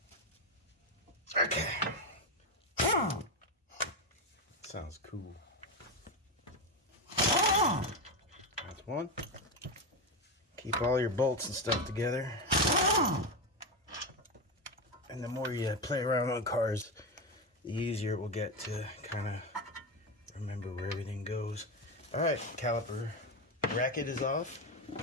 Okay. Sounds cool. That's one. Keep all your bolts and stuff together. And the more you play around on cars, the easier it will get to kind of remember where everything goes. Alright, caliper bracket is off.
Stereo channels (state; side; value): normal; both; correlation 0.13